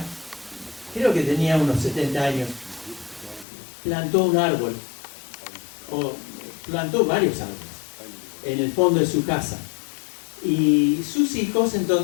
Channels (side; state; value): right; drops out; at 3.5 s